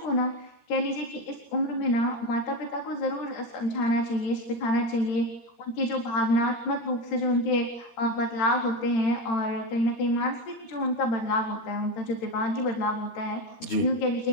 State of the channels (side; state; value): right; late; 13 ms